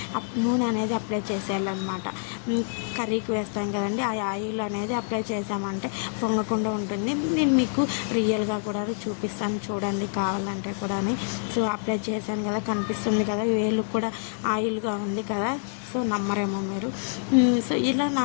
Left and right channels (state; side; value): silent; right; digital silence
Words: నూనె అనేది అప్లై చేసేయాలన్నమాట. కర్రీకి వేస్తాం కదండి, ఆ ఆయిల్ అనేది అప్లై చేసామంటే పొంగకుండా ఉంటుంది. నేను మీకు రియల్గా కూడా చూపిస్తాను చూడండి కావాలంటే కూడా. సో అప్లై చేశాను కదా, కనిపిస్తుంది కదా, వేలు కూడా ఆయిల్గా ఉంది కదా. సో నమ్మరేమో మీరు. సో ఇలా